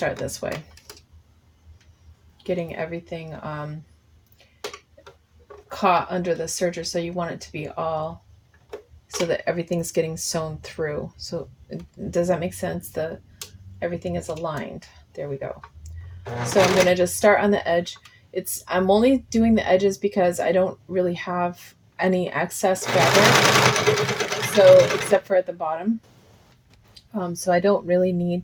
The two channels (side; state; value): both; identical; correlation 1.00